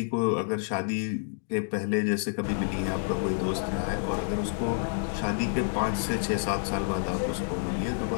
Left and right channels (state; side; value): silent; right; digital silence